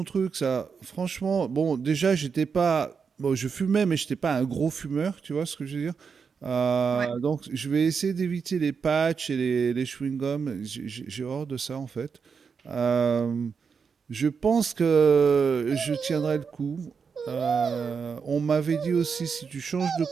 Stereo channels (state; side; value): quieter; left; 5.9 dB